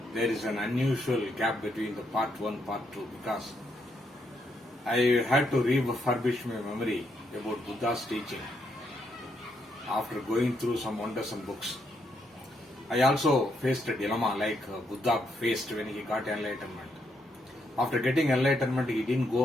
There is an unusual gap between the part 1 and part 2 because I had to refurbish my memory about Buddha's teaching after going through some wondersome books. I also faced a dilemma like Buddha faced when he got enlightenment. After getting enlightenment, he didn't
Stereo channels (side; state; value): both; normal; correlation 0.77